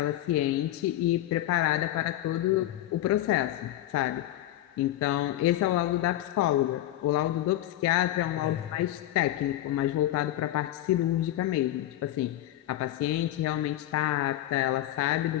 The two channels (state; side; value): quieter; right; 14.0 dB